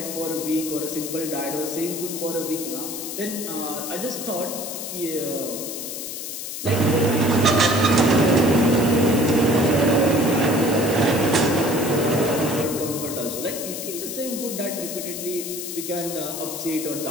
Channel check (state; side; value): noise; left; hiss, 7 dB below the sound